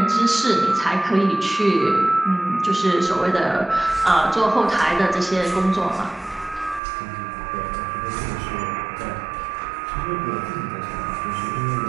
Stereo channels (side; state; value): left; drops out; at 6.8 s